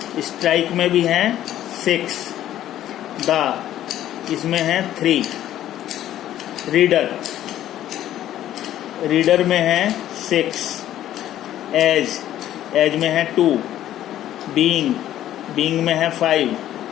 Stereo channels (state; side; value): quieter; right; 12.4 dB